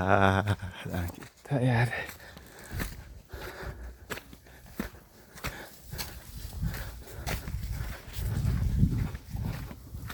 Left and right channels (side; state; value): both; identical; correlation 1.00